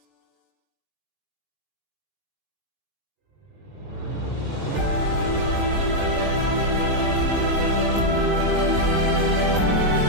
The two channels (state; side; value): late; left; 20 ms